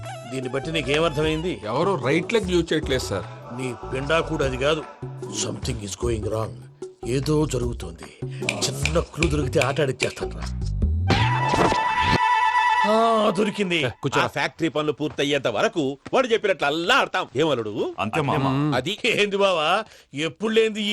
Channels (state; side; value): identical; both; correlation 1.00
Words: దీన్ని బట్టి నీకేమర్థమైంది? ఎవరు రైట్ లెగ్ యూజ్ చేయట్లేదు సార్. నీ పిండా కూడా అది కాదు. Something is going wrong. ఏదో జరుగుతోంది. చిన్న క్లూ దొరికితే ఆట ఆడిచ్చేస్తాను రా. దొరికింది. ఆ ఫ్యాక్టరీ పనులు పూర్తయ్యేంత వరకు వాడు చెప్పినట్లు అల్లా ఆడతాం. ఏమలుడు అంతే మామ. అది ఏంది బావా ఎప్పుడు లేంది